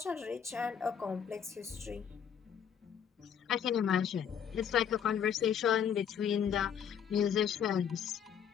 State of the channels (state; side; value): quieter; right; 8.2 dB